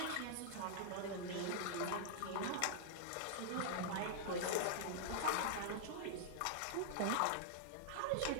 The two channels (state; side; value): different; both; correlation -0.01